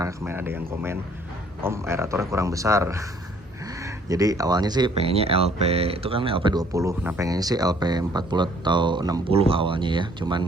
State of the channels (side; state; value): both; normal; correlation 0.60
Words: kemarin ada yang komen, Om aeratornya kurang besar. Jadi awalnya sih pengennya LP itu kan LP 20. Nah, pengennya sih LP 40 atau 60 awalnya ya.